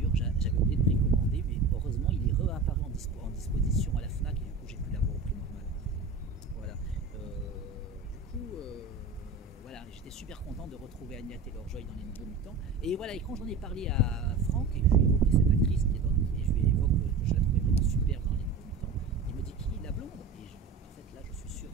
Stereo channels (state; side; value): quieter; left; 4.3 dB